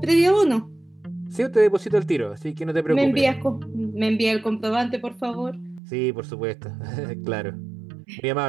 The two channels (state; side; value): drops out; left; at 5.8 s